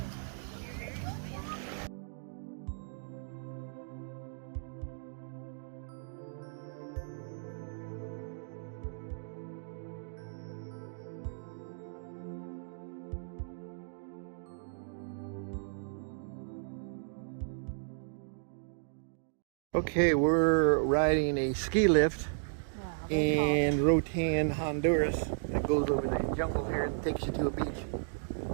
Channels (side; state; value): left; silent; digital silence